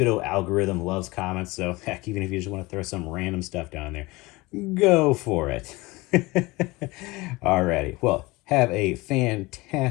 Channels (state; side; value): quieter; right; 22.4 dB